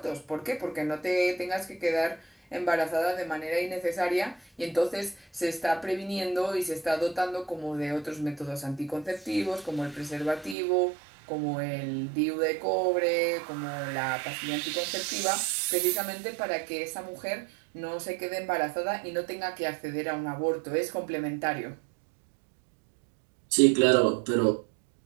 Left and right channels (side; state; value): left; drops out; at 10.6 s